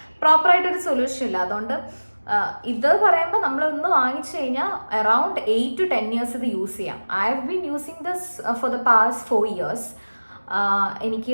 പ്രോപ്പറായിട്ടൊരു സൊല്യൂഷൻ ഇല്ല. അതുകൊണ്ട് ഇത് പറയുമ്പോൾ നമ്മളൊന്ന് വാങ്ങിച്ചു കഴിഞ്ഞാൽ അറൗണ്ട് 8 to 10 years ഇത് യൂസ് ചെയ്യാം. I have been using this for the past 4 years.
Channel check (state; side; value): inverted; both; correlation -1.00